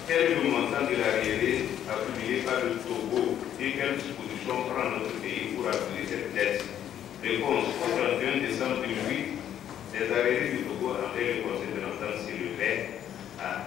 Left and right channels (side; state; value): right; quieter; 10.4 dB